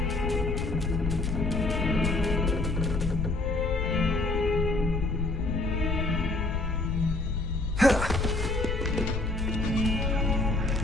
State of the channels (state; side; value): noise; left; rumble, 4 dB below the sound